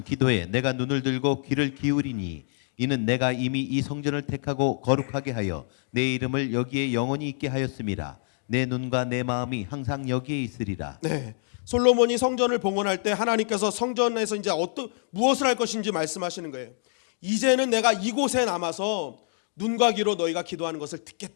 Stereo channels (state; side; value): silent; right; digital silence